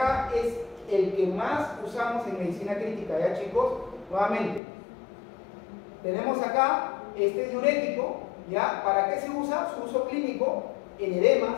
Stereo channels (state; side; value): drops out; right; at 4.6 s